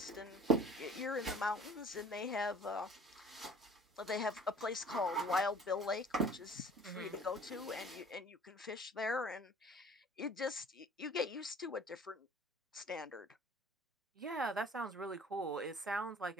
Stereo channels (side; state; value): both; normal; correlation 0.50